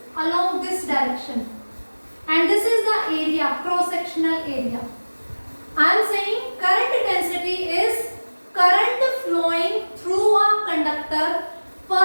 along this direction, and this is the area, cross-sectional area. I am saying current density is current flowing through a conductor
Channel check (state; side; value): inverted; both; correlation -1.00